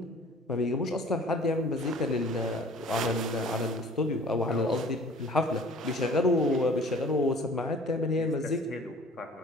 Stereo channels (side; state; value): both; normal; correlation 0.49